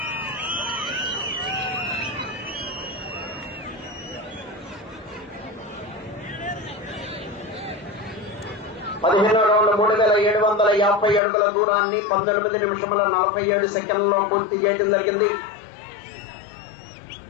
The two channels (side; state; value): right; drops out; at 11.2 s